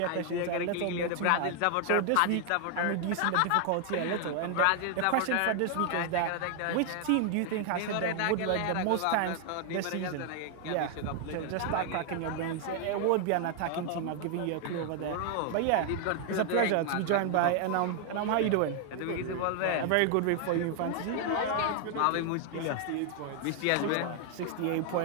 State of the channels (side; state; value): both; different; correlation 0.00